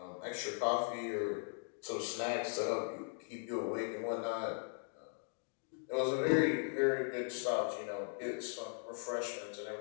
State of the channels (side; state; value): right; silent; 52 dB below the other